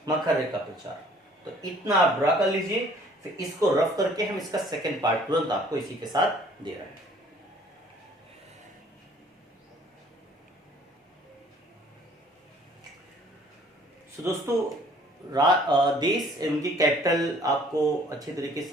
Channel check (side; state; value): both; normal; correlation 0.56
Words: मकर रेखा पे 4, तो इतना आप ड्रा कर लीजिए। फिर इसको रफ करके हम इसका सेकंड पार्ट तुरंत आपको इसी के साथ दे रहे हैं। तो दोस्तों देश एवं की कैपिटल आपको अच्छे तरीके से